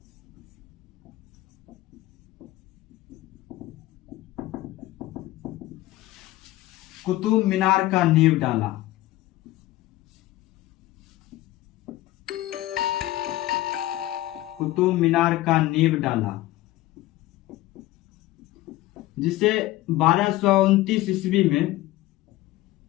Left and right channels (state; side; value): quieter; right; 16.4 dB